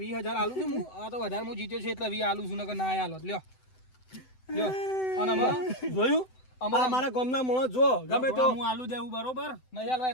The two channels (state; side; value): late; right; 7.9 ms